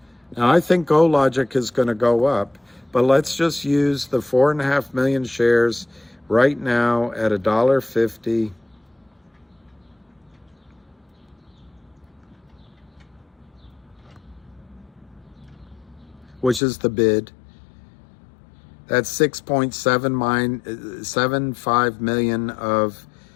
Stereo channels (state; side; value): drops out; right; at 16.6 s